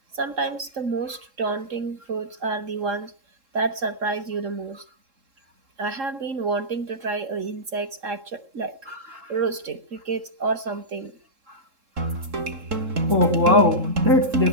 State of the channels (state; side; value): late; left; 3.7 ms